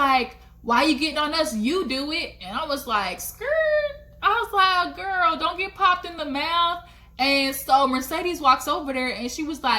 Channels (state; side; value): identical; both; correlation 1.00